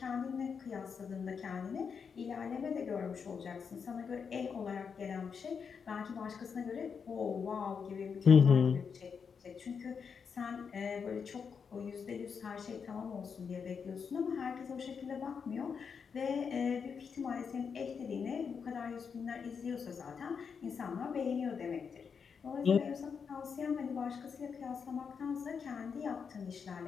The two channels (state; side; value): quieter; right; 6.2 dB